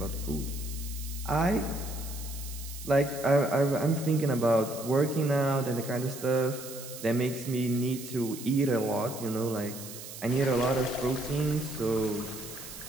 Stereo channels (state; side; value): noise; right; hiss, 12 dB below the sound